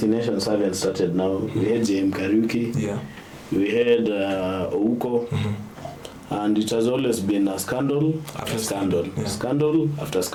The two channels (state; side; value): identical; both; correlation 1.00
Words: haven't started now. We had J.M. Kariuki. Yeah. We had Ouko. And it has always been a scandal after scandal. Yeah. Scandal after